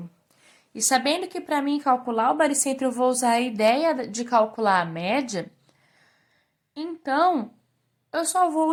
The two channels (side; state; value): both; identical; correlation 1.00